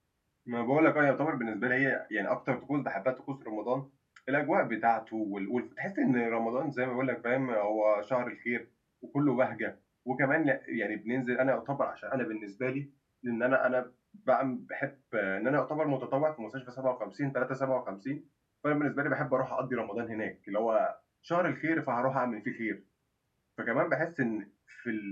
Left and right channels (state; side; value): identical; both; correlation 1.00